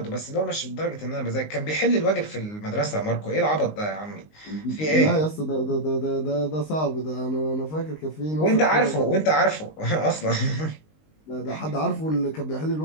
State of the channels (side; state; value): right; late; 19 ms